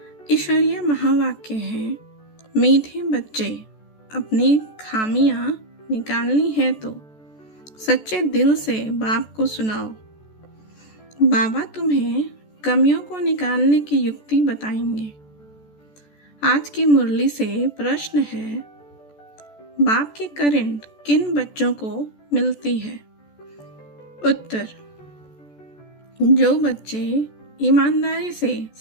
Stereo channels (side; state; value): right; late; 14 ms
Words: ईश्वरीय महावाक्य है। मीठे बच्चे, अपनी खामियां निकालनी है तो सच्चे दिल से बाप को सुनाओ। बाबा तुम्हें कमियों को निकालने की युक्ति बताएंगे। आज की मुरली से प्रश्न है, बाप की करंट किन बच्चों को मिलती है? उत्तर, जो बच्चे ईमानदारी से